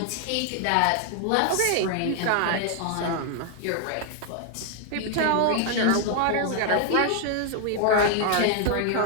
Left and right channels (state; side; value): different; both; correlation 0.00